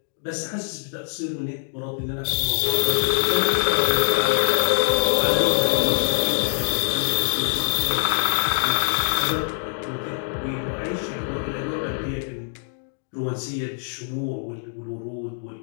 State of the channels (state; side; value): silent; right; digital silence